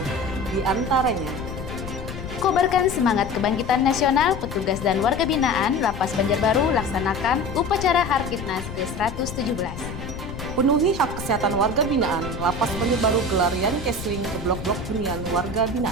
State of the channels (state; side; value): noise; left; rumble, 9 dB below the sound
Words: Di antaranya, Kobarkan semangat kebangkitan nasional, petugas dan warga binaan Lapas Banjarbaru laksanakan upacara Harkitnas ke-117. penuhi hak kesehatan warga binaan, Lapas Banjarbaru gelar Yankesling ke blok-blok hunian warga